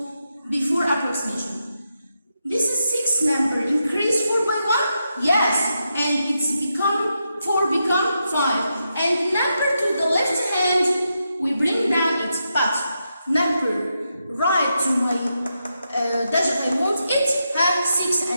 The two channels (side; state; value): both; inverted; correlation -0.85